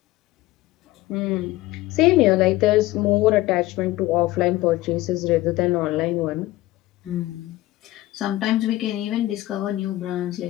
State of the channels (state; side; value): quieter; right; 17.3 dB